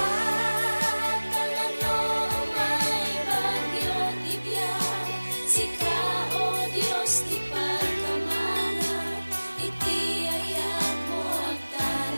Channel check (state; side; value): inverted; both; correlation -1.00